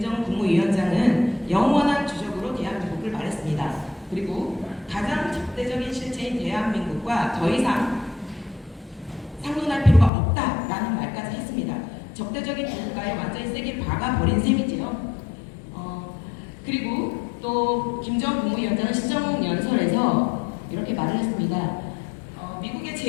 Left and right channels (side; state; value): right; drops out; at 10.1 s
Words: 국무위원장은 영원한 주적으로 대한민국을 말했습니다. 그리고 가장 적대적인 실체인 대한민국과 더 이상 상논할 필요가 없다라는 말까지 했습니다. 적대적인 국가에 완전히 세게 박아버린 셈이지요. 그리고 또 김정은 국무위원장은 시정연설에서 이렇게 말을 했습니다. 미국의